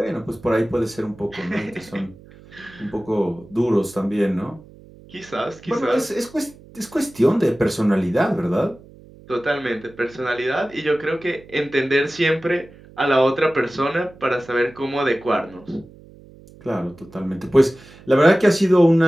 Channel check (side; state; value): right; noise; hum, 22 dB below the sound